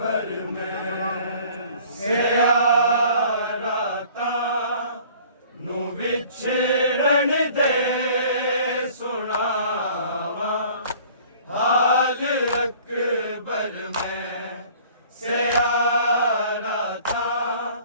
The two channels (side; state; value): both; inverted; correlation -0.51